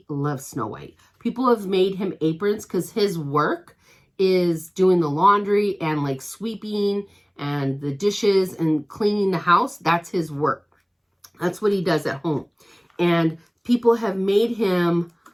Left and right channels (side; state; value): both; identical; correlation 1.00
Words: loves Snow White. People have made him aprons because his work is doing the laundry and like sweeping and the dishes and cleaning the house. That's his work. That's what he does at home. And people have made him,